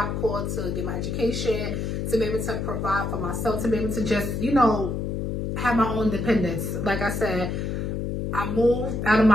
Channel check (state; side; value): noise; left; hum, 2 dB below the sound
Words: Corps to get my education, to be able to provide for myself, to be able to just, have my own independence. Like I said, I moved out of